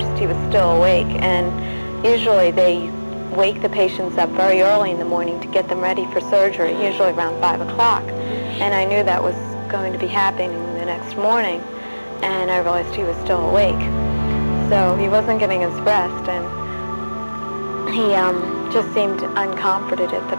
he was still awake, and usually they wake the patients up very early in the morning to get them ready for surgery, usually around 5 o'clock. And I knew that was going to be happening the next morning, and I realized he was still awake. So he wasn't getting his rest, and he just seemed uncomforted at the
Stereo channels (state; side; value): inverted; both; correlation -1.00